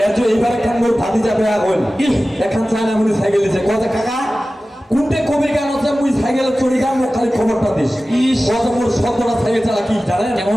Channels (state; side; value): normal; both; correlation 0.96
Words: এইবার একখান মোর ভাতি যাবে এখন একখান চায়না মুনি সাইকেল দিছে কথা কাকা কোনটে কবির গান আছে মুই সাইকেলে চড়ি গান মোক খালি খবরটা দিস। কত মোর শব্দটা সাইকেল চালা কি জানেন